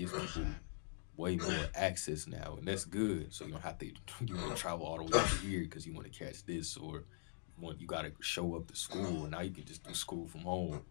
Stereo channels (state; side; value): silent; right; digital silence